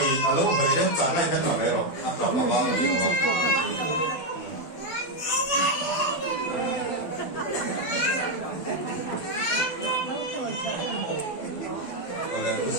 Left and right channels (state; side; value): late; right; 12 ms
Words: đấy trả lại cái nào đấy rồi, anh làm mà bao nhiêu rồi.